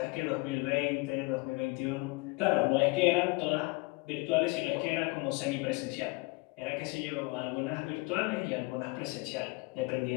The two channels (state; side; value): quieter; right; 26.0 dB